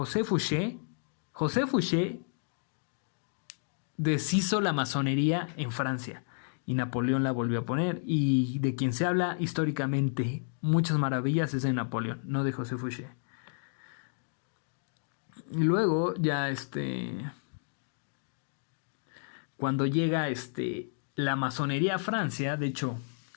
Fouché deshizo la masonería en Francia y Napoleón la volvió a poner, y de quien se habla históricamente muchas maravillas es de Napoleón, no de José Fouché. Y luego ya cuando llega la masonería a Francia, de hecho,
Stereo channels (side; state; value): right; silent; digital silence